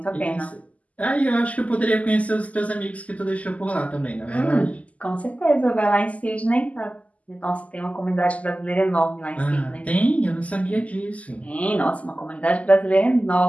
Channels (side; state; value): right; late; 0.071 ms